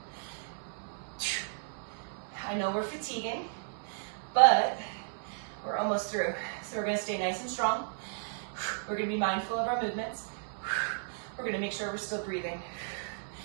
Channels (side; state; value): left; silent; digital silence